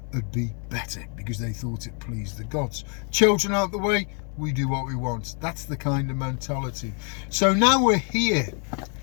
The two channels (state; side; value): quieter; right; 39.3 dB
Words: would be better, because they thought it pleased the gods. Children out the way, we do what we want. That's the kind of mentality. So now we're here